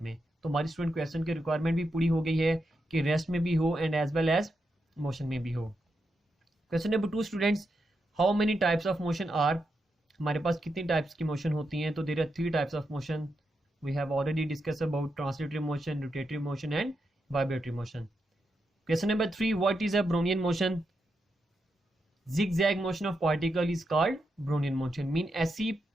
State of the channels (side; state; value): both; normal; correlation 0.85